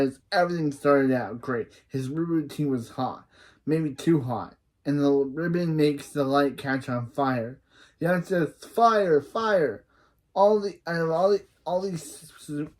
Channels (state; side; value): identical; both; correlation 1.00